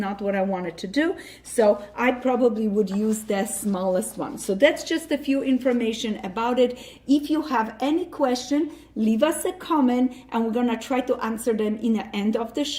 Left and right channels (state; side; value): identical; both; correlation 1.00